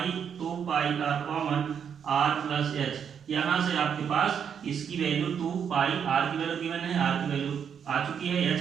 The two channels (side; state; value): left; quieter; 7.7 dB